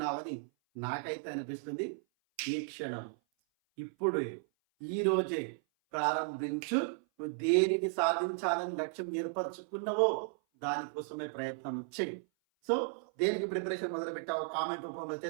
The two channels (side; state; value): left; silent; 55 dB below the other